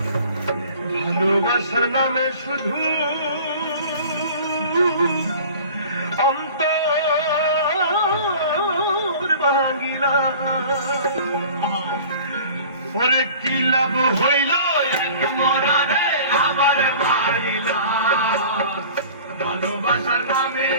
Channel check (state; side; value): inverted; both; correlation -0.44